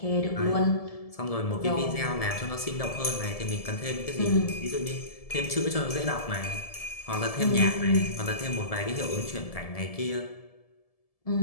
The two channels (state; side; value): late; right; 1.7 ms